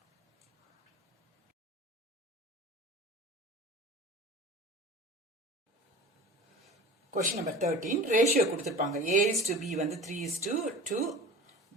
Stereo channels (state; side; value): normal; both; correlation 0.37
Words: Question number 13. Ratio கொடுத்திருப்பாங்க. A is to B வந்து 3 is to 2.